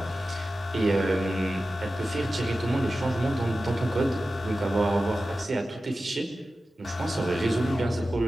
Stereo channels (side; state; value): both; normal; correlation 0.94